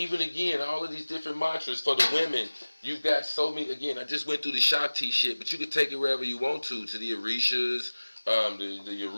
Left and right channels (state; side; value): inverted; both; correlation -1.00